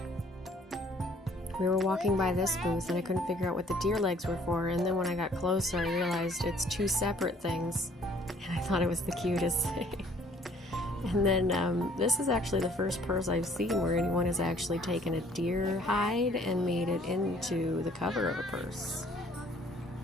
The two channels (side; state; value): both; normal; correlation 0.59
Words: We were walking by this booth and I couldn't figure out what the deer legs were for, and then when I got closer I realized it's two separate things, and I thought it was the cutest thing. And then this is actually the first purse I've seen where anyone has actually taken a deer hide and made it into the cover of a purse.